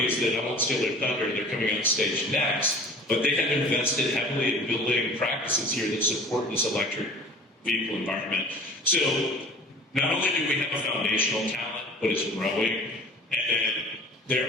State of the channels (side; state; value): both; normal; correlation 0.44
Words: that, I won't steal their thunder, they're coming on stage next, but they have invested heavily in building practices here that support this electric vehicle environment. So not only do we have a foundational talent, but it's growing, and